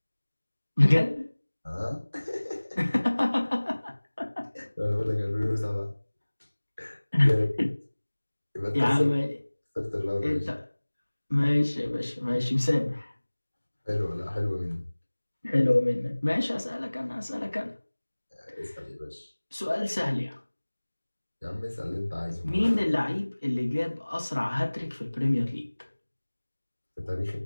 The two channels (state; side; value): inverted; both; correlation -1.00